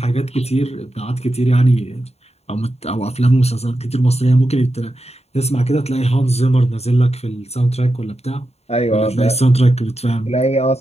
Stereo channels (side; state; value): right; late; 0.30 ms